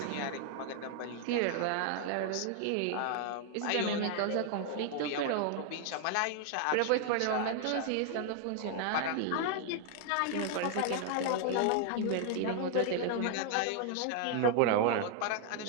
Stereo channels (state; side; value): different; both; correlation 0.00